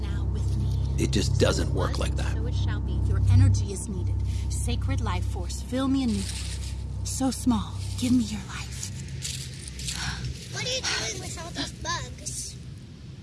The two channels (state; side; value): identical; both; correlation 1.00